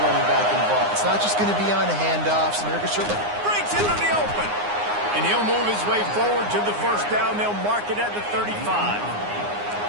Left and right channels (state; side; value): late; left; 9.7 ms